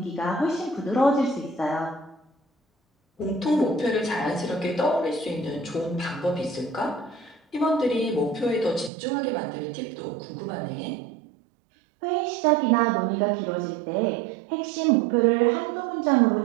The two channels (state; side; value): drops out; left; at 8.9 s